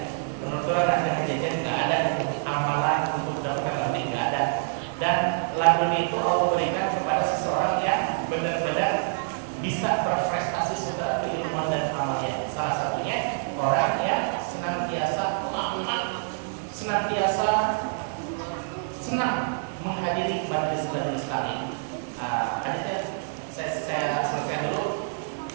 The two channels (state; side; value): silent; left; digital silence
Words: Penuturan ada kejadian nggak ada, amalan untuk mendapatkan laduni nggak ada. Dan laduni itu Allah berikan kepada seseorang yang benar-benar bisa berprestasi secara keilmuan dan amalnya. Salah satunya orang yang senantiasa senang menghadiri majelis taklim. Hadisnya saya selesaikan dulu.